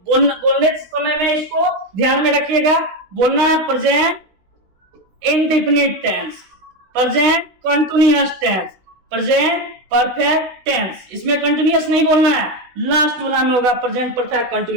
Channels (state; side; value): late; left; 16 ms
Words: बोलने समय में इसको ध्यान में रखिएगा, बोलना है present indefinite tense, present continuous tense, present perfect tense. इसमें कंटिन्यूअस नहीं बोलना है, लास्ट वाला में होगा प्रेजेंट परफेक्ट